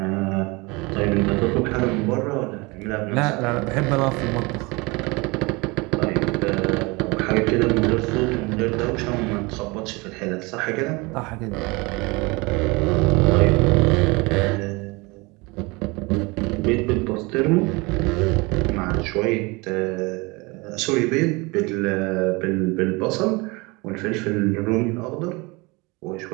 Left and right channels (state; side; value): quieter; left; 25.7 dB